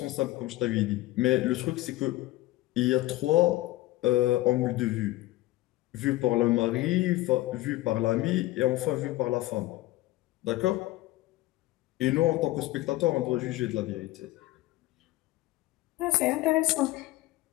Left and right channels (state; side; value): quieter; right; 17.5 dB